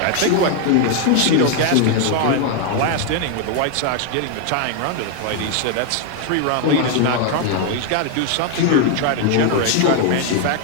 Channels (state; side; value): different; both; correlation 0.00